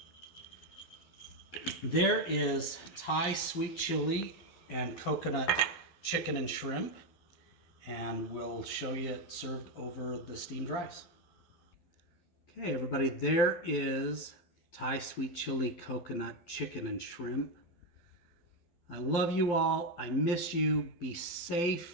there is Thai sweet chili and coconut chicken and shrimp. And we'll show you it served over the steamed rice. Okay, everybody, there is Thai sweet chili, coconut, chicken, and shrimp. I love you all. I miss you. Be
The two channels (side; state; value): right; late; 12 ms